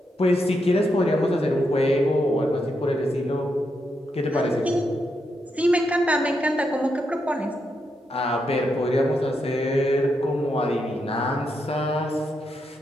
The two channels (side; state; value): both; normal; correlation 0.82